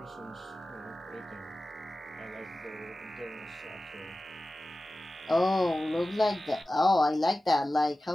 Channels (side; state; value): both; normal; correlation 0.95